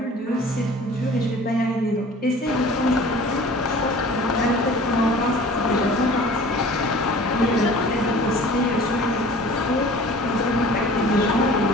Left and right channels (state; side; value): normal; both; correlation 0.45